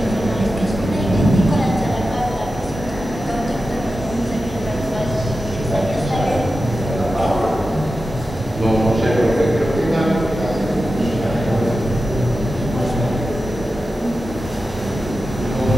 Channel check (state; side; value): normal; both; correlation 0.92